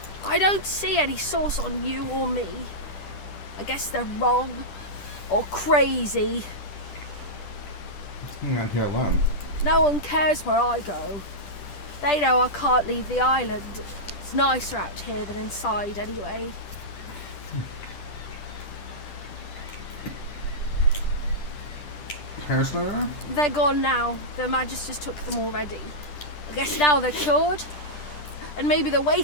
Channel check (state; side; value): late; right; 10 ms